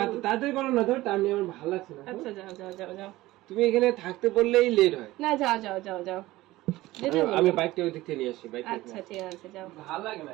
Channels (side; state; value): left; quieter; 17.7 dB